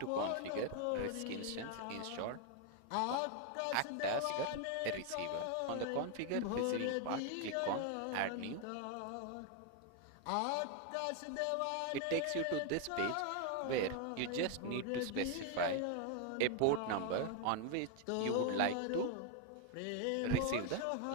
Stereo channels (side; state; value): both; different; correlation 0.01